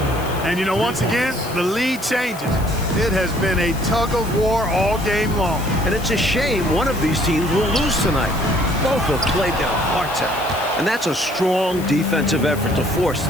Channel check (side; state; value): left; noise; hiss, 16 dB below the sound